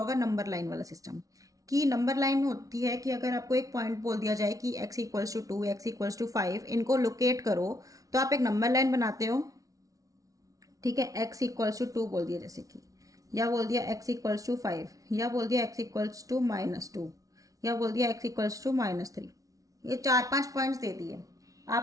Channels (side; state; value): left; late; 0.17 ms